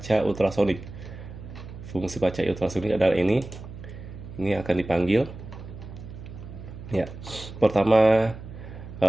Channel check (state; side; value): noise; right; hum, 13 dB below the sound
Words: ultrasonik. Fungsi baca ultrasonik adalah ini akan dipanggil ya. Pertama